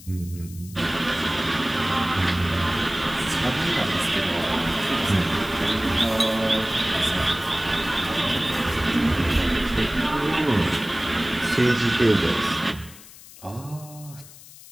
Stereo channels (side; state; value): left; noise; hiss, 19 dB below the sound